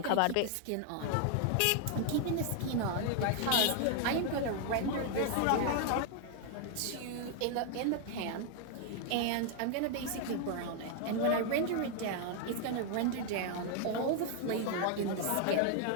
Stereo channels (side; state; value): both; different; correlation 0.00